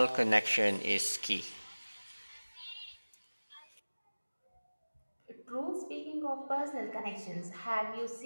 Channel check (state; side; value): inverted; both; correlation -1.00